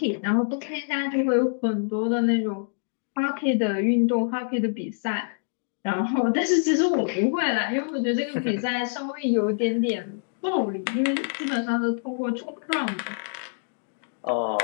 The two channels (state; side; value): silent; right; digital silence